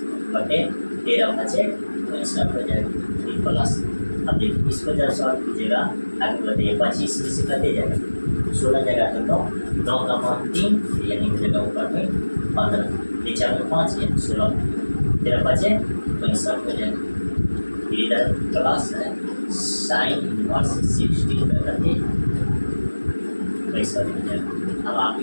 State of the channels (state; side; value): inverted; both; correlation -1.00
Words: बटे 13 बचे, तो इसका हो जाएगा प्लस। अब देखिए इसको जब सॉल्व कीजिएगा आगे बताइए 25 में से कटे जाएगा, 16 जगह तो 9 का मान 3, यानी हो जाएगा ऊपर में 15, नीचे में 5, यानी 16, 13 बचे, तो इसका हो जाएगा इधर प्लस है साइन इनवर्स 60 करते पैसा हो जाएगा। अब आप